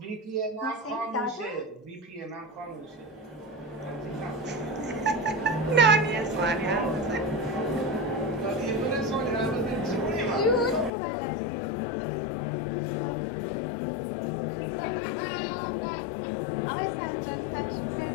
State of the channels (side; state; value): right; drops out; at 10.9 s